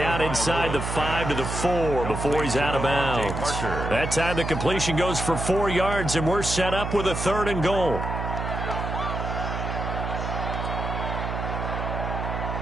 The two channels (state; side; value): noise; right; hum, 4 dB below the sound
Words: inside the 5 to the 4 before he's out of bounds. That time the completion goes for 4 yards, and we're set up with a 3rd and goal.